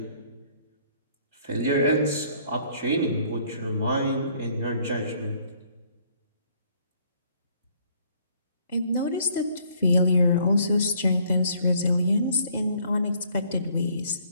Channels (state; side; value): inverted; both; correlation -0.62